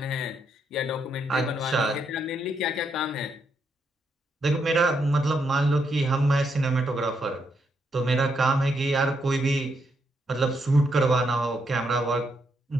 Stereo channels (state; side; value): normal; both; correlation 0.78